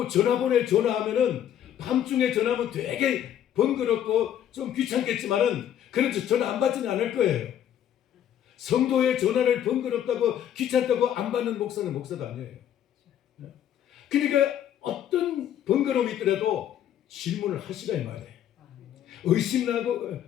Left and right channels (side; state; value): right; quieter; 10.4 dB